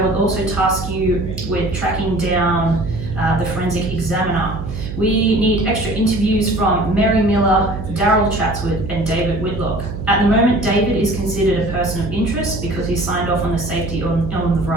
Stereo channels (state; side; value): noise; right; hum, 7 dB below the sound